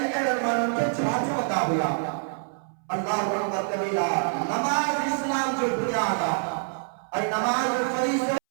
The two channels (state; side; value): silent; left; 61 dB below the other